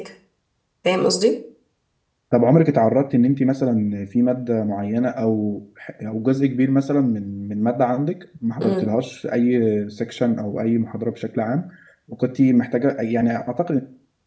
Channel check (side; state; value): both; identical; correlation 1.00